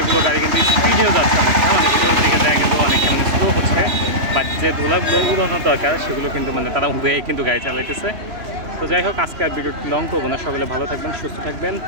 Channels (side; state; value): left; late; 2.9 ms